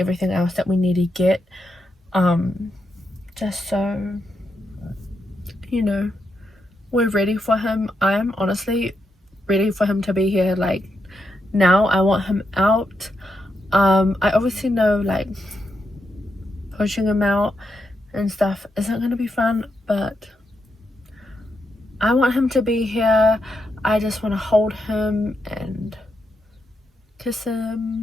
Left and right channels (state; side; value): normal; both; correlation 0.83